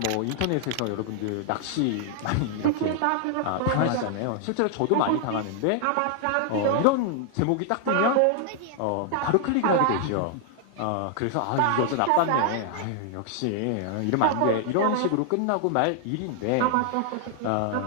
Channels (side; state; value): both; different; correlation 0.00